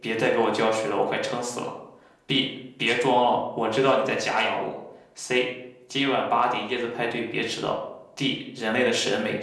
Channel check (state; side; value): identical; both; correlation 1.00